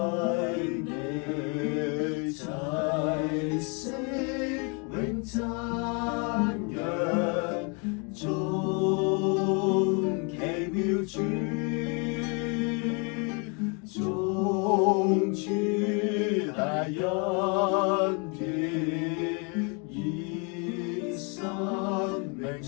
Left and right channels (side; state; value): right; quieter; 34.8 dB